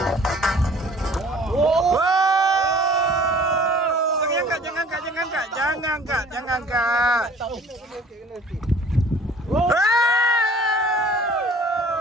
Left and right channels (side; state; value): both; normal; correlation 0.50